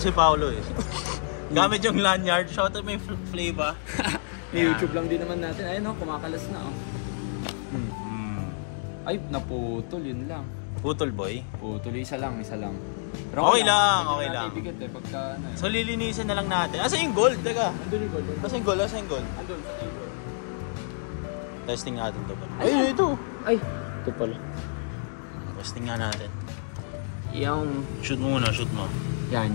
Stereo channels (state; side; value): silent; right; digital silence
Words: si Paolo eh. Gamit yung lanyard. Shout out may flavor. YouTube lang din naman natin. Ayun kumakalas na Ay, naputol, yun lang. Putol boy? Putol, isa lang. Pero okay lang. Ibigat eh, pagka ano eh. So lilinisin na lang natin. Asa yung gold? Teka. Andun yung gold. Asa yung gold? Testing natin to ba? Ay, ito. Ay, ito pala. Testing nga natin. Yung... Shoot mo muna, shoot mo. Yan.